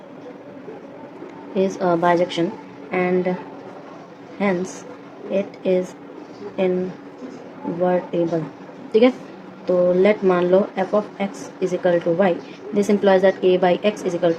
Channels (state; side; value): identical; both; correlation 1.00